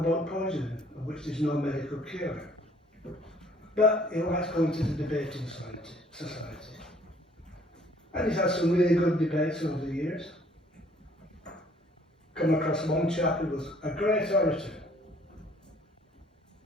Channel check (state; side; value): normal; both; correlation 0.59